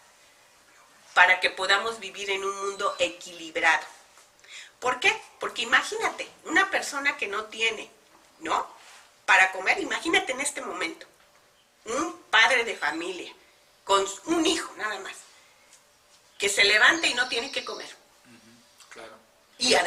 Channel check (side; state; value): both; identical; correlation 1.00